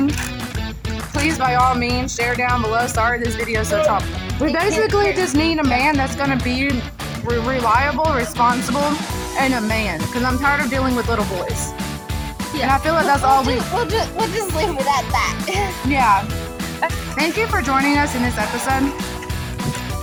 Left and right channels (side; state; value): both; identical; correlation 1.00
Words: please, by all means, share down below. Sorry this video is so chopped. We basically just need a man that's going to be reliable, responsible, and a man. Because I'm tired of dealing with little boys. Yeah. And I feel like that's all we... We'll just leave it at that. Yeah. Thank you for joining us in this episode.